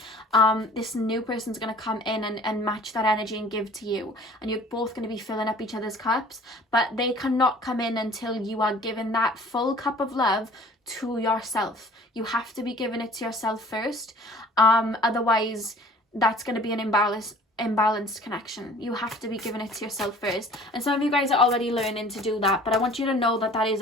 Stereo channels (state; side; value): normal; both; correlation 0.49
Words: this new person's going to come in and match that energy and give to you, and you're both going to be filling up each other's cups. But they cannot come in until you are given that full cup of love to yourself. You have to be giving it to yourself first, otherwise that's going to be an imbalanced connection. You have to be giving it to yourself first, and some of you guys are already learning to do that, but I want you to know that that is